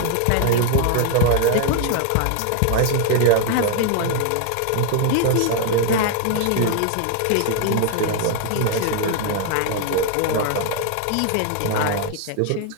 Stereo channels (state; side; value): different; both; correlation 0.00